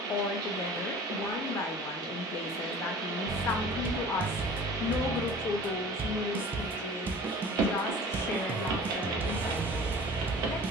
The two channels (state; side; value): normal; both; correlation 0.43